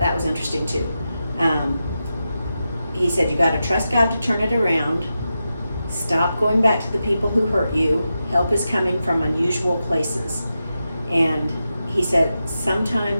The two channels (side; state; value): both; inverted; correlation -0.90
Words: was interesting too. He said you got to trust God to turn it around. Stop going back to the people who hurt you. Help is coming from unusual places. And he said